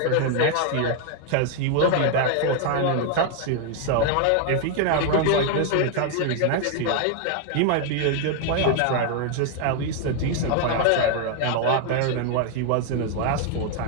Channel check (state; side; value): different; both; correlation 0.00